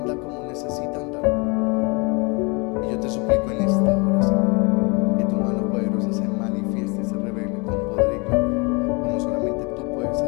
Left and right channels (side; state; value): right; quieter; 30.1 dB